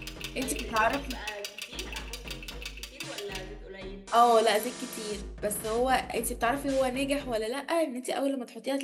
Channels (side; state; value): both; identical; correlation 1.00